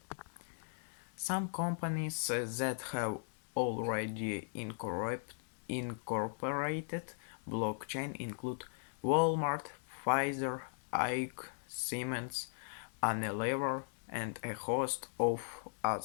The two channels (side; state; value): right; silent; digital silence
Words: Some companies that have already incorporated blockchain include Walmart, Pfizer, Ike, Siemens, Unilever, and a host of